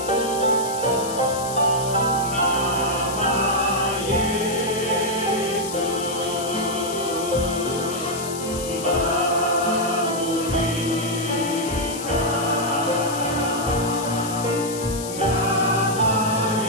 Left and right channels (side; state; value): left; noise; hiss, 9 dB below the sound